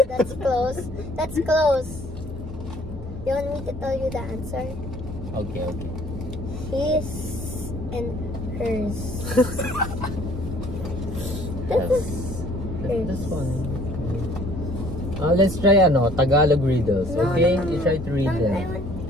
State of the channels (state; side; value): normal; both; correlation 0.57